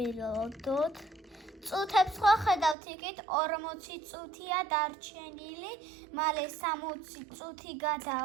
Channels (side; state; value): left; drops out; at 2.8 s